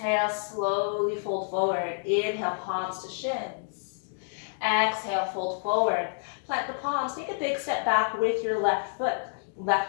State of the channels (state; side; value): silent; right; digital silence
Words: slowly fold forward. Inhale, palms to shins. Exhale, fold forward. Plant the palms. Take a big step back with your left foot.